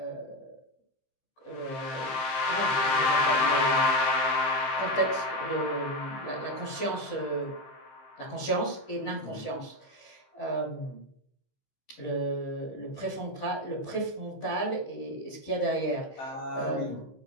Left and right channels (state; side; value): late; right; 15 ms